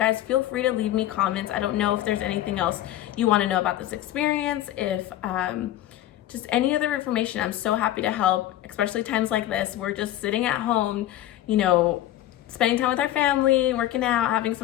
feel free to leave me comments. I don't know if there's anything else you want to know about this experience. If just any other information, I'm so happy to help, especially times like this. We're just sitting at home, spending time with our family, working out, having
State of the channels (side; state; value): right; quieter; 13.4 dB